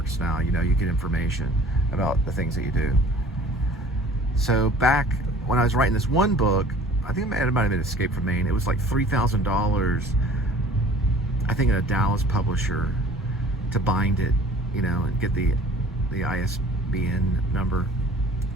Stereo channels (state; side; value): normal; both; correlation 0.49